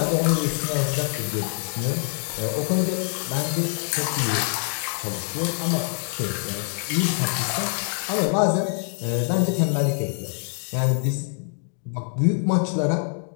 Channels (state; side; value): silent; right; 55 dB below the other